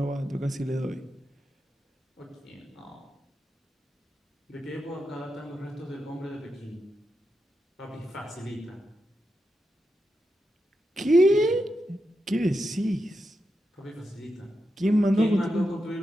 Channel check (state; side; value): normal; both; correlation 0.87